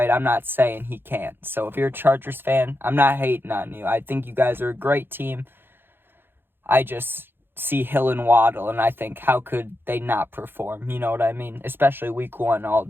I'm not saying he can't. So if you're a Chargers fan, I'm not hating on you. I think you guys are a great team. I just see Hill and Waddle, and I think, how could they not perform? You know what I mean? Especially week 1,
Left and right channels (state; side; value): late; left; 0.10 ms